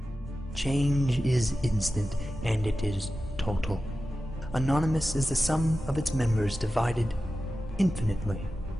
Change is instant, and it is total. Anonymous is the sum of its members divided infinitely.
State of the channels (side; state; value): left; noise; hum, 21 dB below the sound